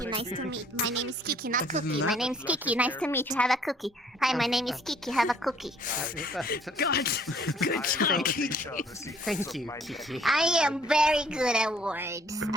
Nice to meet. My name is Kiki, not Other than Cookie. My that- name's Kiki. Nice to meet you. Have a cookie. Hi, my name is Kiki. Have a cookie. God, good job, Kiki. Thank you, Kiki. I am very good at words.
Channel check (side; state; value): both; normal; correlation 0.58